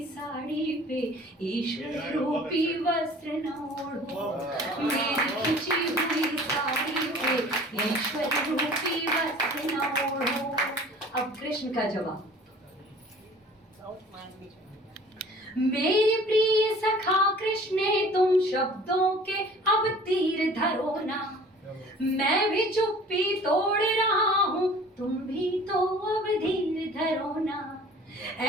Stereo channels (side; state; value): both; normal; correlation 0.48